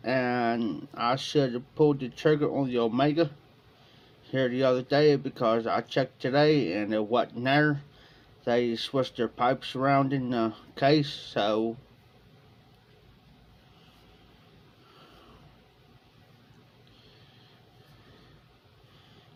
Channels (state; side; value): identical; both; correlation 1.00